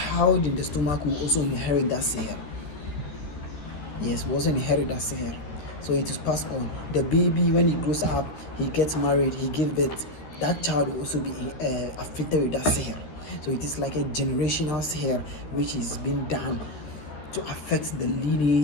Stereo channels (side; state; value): right; late; 13 ms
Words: in the stomach will also inherit that sihr. Yes, will also inherit that sihr. So it is passed on. The baby, when he grows up, he gets married, he gives birth, that child will also be afflicted with that sihr. So it is like a generational sihr which is being done to affect the